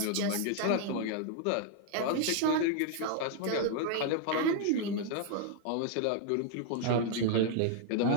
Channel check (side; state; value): both; different; correlation 0.00